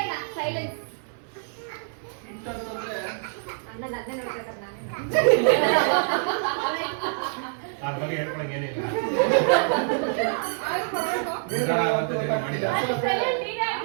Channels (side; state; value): left; silent; digital silence